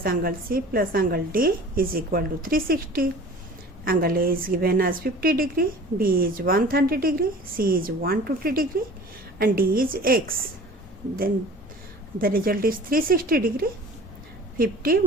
angle C plus angle D is equal to 360. Angle A is given as 50 degree, B is 130 degree, C is 120 degree and D is x. Then the result is 360 degree. 50,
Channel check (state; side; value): normal; both; correlation 0.43